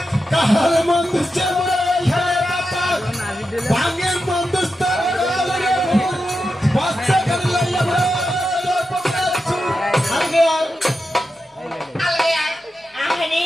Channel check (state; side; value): normal; both; correlation 0.89